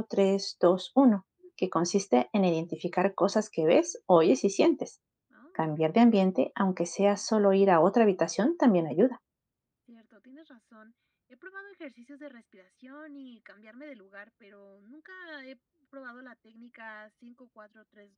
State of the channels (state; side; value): identical; both; correlation 1.00